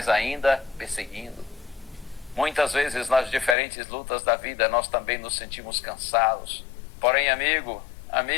ainda perseguindo. Muitas vezes nas diferentes lutas da vida nós também nos sentimos cansados. Porém, amigo,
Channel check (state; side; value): drops out; right; at 3.6 s